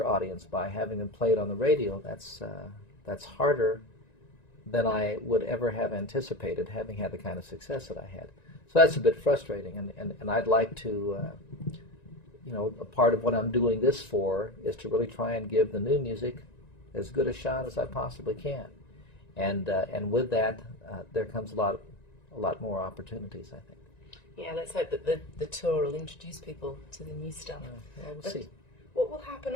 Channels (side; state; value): right; late; 1.9 ms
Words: audience by having them played on the radio, that's harder than I would ever have anticipated, having had the kind of success that I had. So that's a bit frustrating, and I'd like to, a part of what I'm doing this for is to really try and give the new music as good a shot as I possibly can, and with that, there comes a lot more opportunities, I think. Yeah, let's hope that the tour will introduce people to the new stuff. Well, we'll see. What will happen